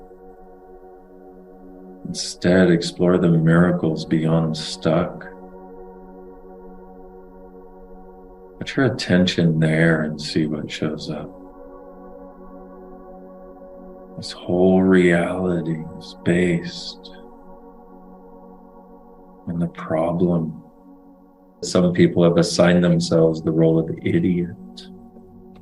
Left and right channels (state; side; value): identical; both; correlation 1.00